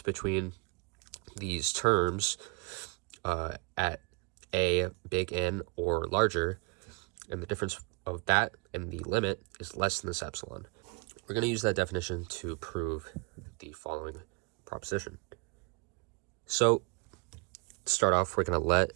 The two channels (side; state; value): left; quieter; 30.6 dB